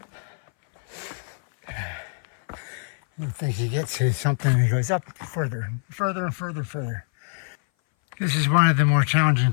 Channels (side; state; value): right; silent; 58 dB below the other